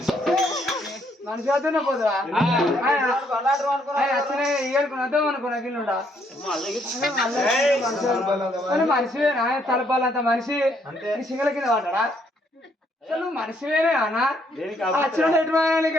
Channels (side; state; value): both; normal; correlation 0.70